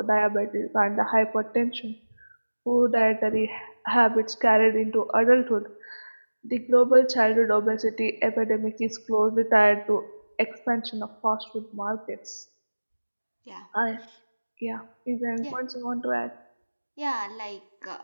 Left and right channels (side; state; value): both; inverted; correlation -1.00